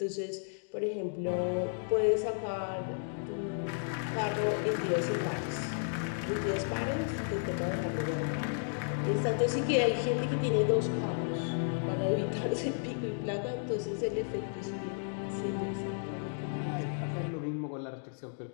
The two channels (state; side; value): silent; right; digital silence